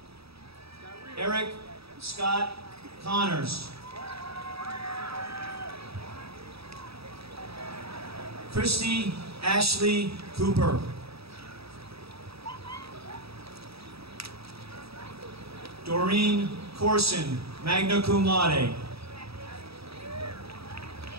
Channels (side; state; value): left; late; 0.77 ms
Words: Eric Scott Connors. Christy Ashley Cooper. Doreen Corson, magna cum laude.